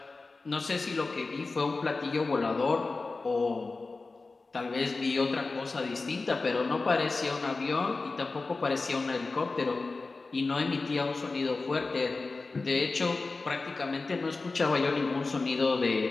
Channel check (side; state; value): right; quieter; 3.7 dB